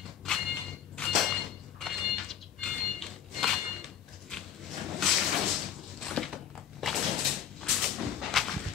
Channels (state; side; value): quieter; right; 9.7 dB